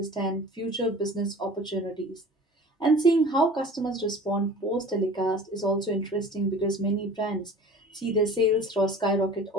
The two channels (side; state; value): both; normal; correlation 0.42